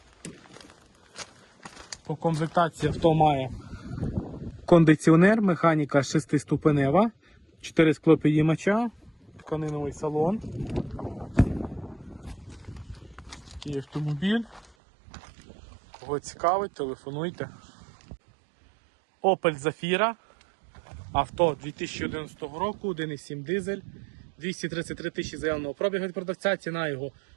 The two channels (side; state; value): left; drops out; at 14.7 s